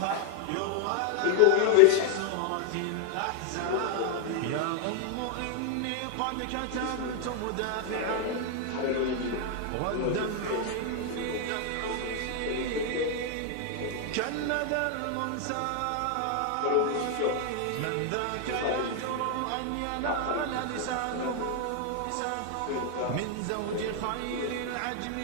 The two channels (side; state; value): both; different; correlation 0.00